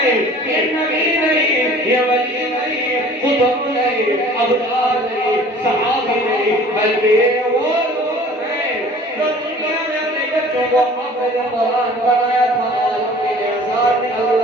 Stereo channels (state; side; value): normal; both; correlation 0.48